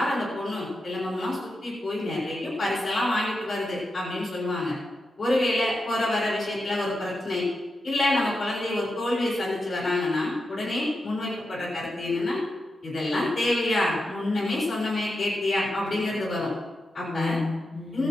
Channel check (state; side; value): normal; both; correlation 0.88